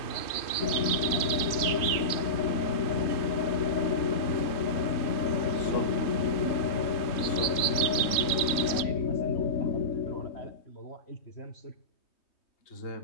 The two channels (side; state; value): right; late; 3.2 ms